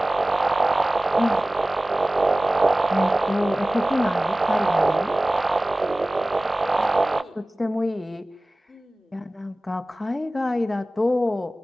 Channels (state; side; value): normal; both; correlation 0.97